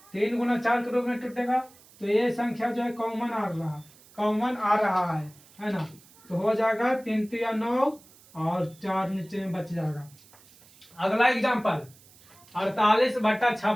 3 गुना 4 के रूप में टूटेगा। तो ये संख्या जो है कॉमन आ रहा है ना। तो हो जाएगा 3 3 9 और 4 नीचे में बच जाएगा। अगला एग्जाम्पल 48 बटा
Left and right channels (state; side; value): noise; right; hiss, 26 dB below the sound